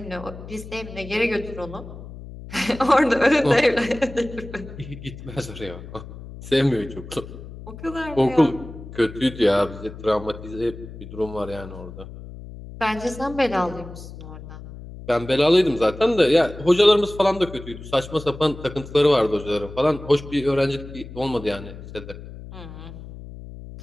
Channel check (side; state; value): left; noise; hum, 14 dB below the sound